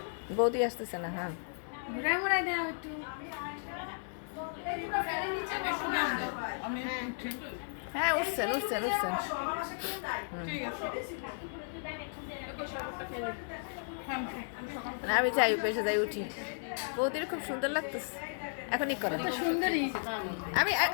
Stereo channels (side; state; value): right; silent; digital silence